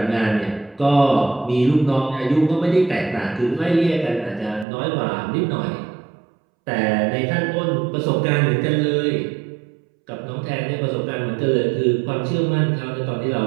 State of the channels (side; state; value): left; drops out; at 4.7 s